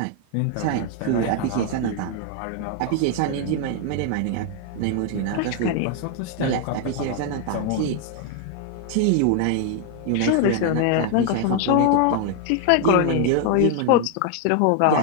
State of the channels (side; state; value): both; different; correlation 0.00